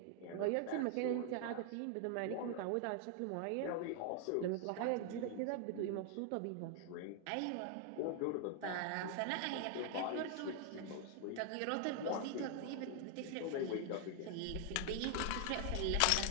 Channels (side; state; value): both; different; correlation 0.00